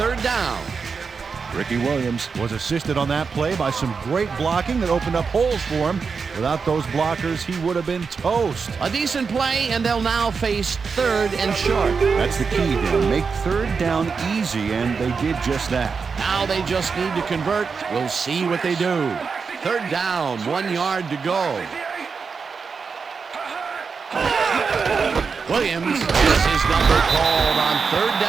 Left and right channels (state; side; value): quieter; left; 5.3 dB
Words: down. Ricky Williams was assisted on that play by some great blocking that opened up holes for him. Without those blockers, he would have been toast. A decent play, and they'll now face third and short. That's the key, Dan. Make third down easy, and they did just that. Now they just need to convert. We'll see what they do. Third down, 1 yard to go. Williams has his number called on third